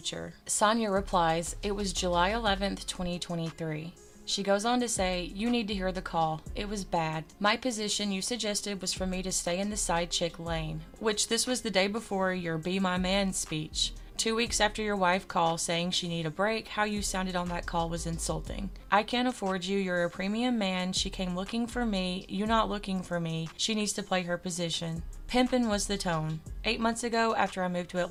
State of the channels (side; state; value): both; identical; correlation 1.00